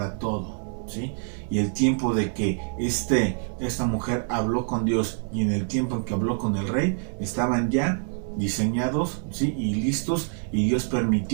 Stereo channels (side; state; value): left; silent; 56 dB below the other